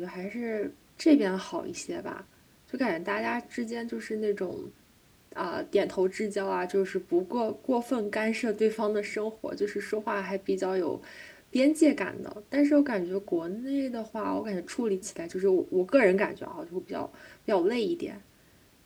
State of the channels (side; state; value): both; identical; correlation 1.00